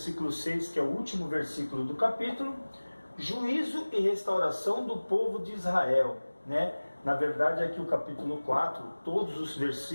6, que é o último versículo do capítulo, juízo e restauração do povo de Israel, né? Na verdade, aqui o capítulo 4, todos os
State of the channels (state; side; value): inverted; both; correlation -1.00